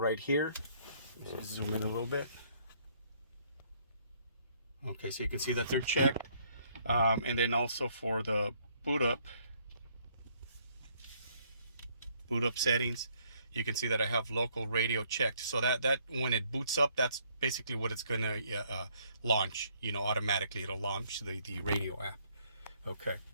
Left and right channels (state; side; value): inverted; both; correlation -0.66